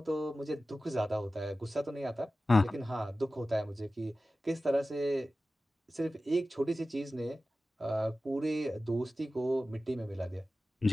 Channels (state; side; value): normal; both; correlation 0.95